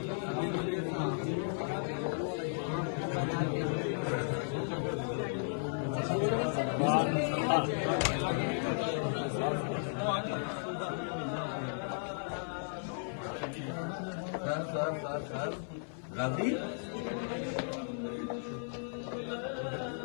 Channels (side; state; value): right; silent; 54 dB below the other